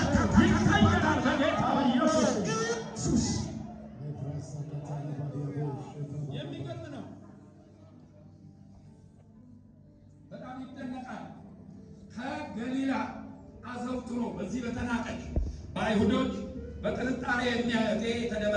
ይቀየራል በጌታ በኢየሱስ። የሚገርም ነው። በጣም ይደነቃል። ከገሊላ አዘውትሮ በዚህ በተናቀች በአይሁዶች በጥርጣሬ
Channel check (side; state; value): both; identical; correlation 1.00